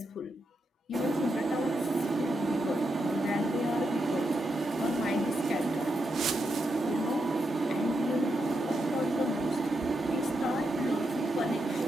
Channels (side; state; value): both; normal; correlation 0.84